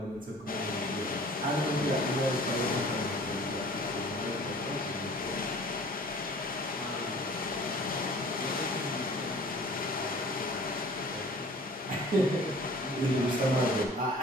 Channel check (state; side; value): normal; both; correlation 0.47